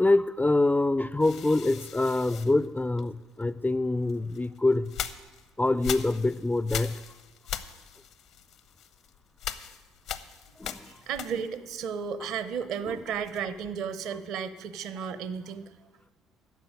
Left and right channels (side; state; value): both; normal; correlation 0.90